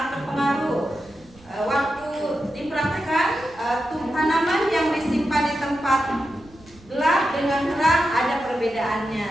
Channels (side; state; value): right; noise; rumble, 25 dB below the sound